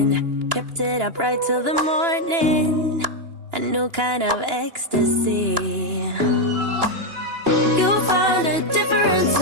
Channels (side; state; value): left; late; 2.9 ms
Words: kept it up right till the morning. A new kind of ecstasy. You found a different